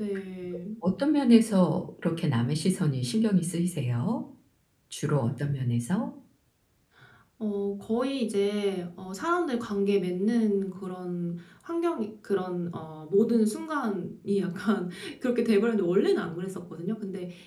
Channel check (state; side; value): identical; both; correlation 1.00